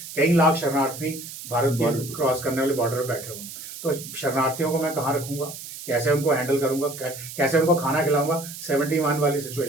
कई लाख शरणार्थी भारत की क्रॉस करने वाले बॉर्डर पर बैठे हुए, तो शरणार्थियों को मैं कहाँ रखूंगा, कैसे उनको हैंडल करूंगा, कैसे उनको खाना खिलाऊंगा? 71 वाली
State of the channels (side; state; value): right; noise; hiss, 12 dB below the sound